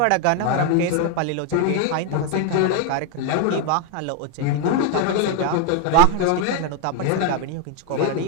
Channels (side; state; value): both; different; correlation 0.01